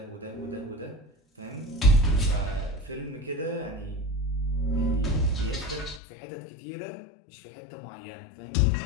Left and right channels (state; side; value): drops out; right; at 6.0 s